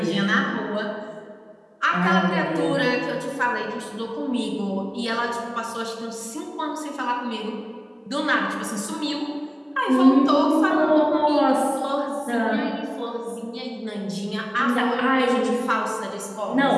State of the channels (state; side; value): identical; both; correlation 1.00